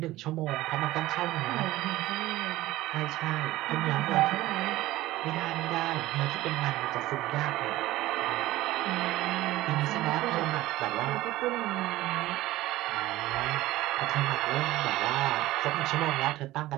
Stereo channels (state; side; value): quieter; left; 16.8 dB